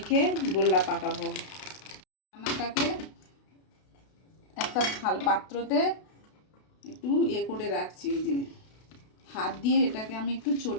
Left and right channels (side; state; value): right; late; 32 ms